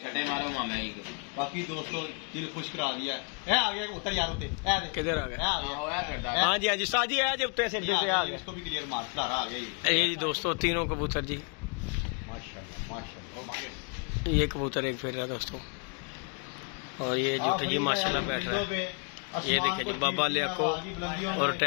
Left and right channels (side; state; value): right; quieter; 38.7 dB